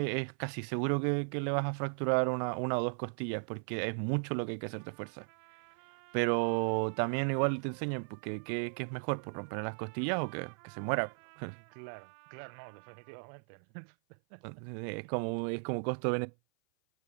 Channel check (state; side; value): silent; left; 54 dB below the other